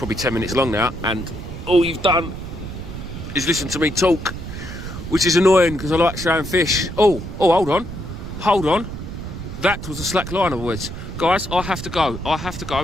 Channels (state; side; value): noise; right; rumble, 9 dB below the sound